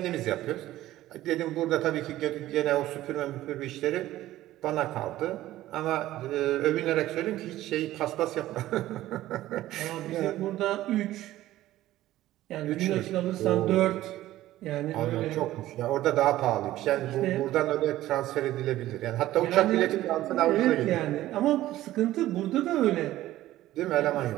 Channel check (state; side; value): quieter; left; 15.0 dB